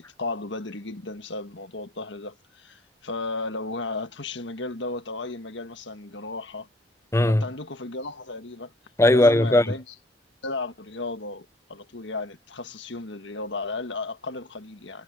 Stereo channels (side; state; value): both; normal; correlation 0.56